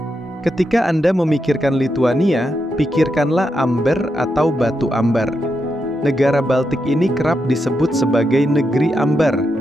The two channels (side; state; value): both; normal; correlation 0.84